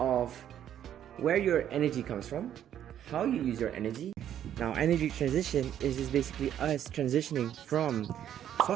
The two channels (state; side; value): quieter; left; 10.4 dB